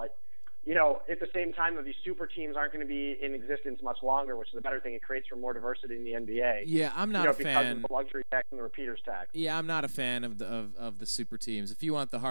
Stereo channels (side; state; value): both; inverted; correlation -1.00